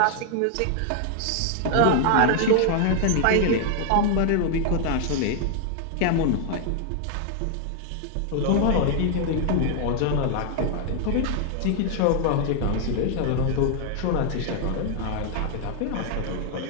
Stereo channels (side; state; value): both; different; correlation 0.00